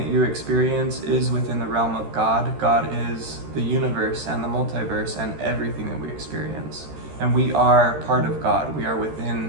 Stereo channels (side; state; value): left; late; 13 ms